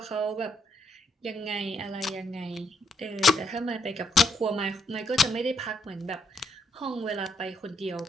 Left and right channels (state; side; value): normal; both; correlation 0.74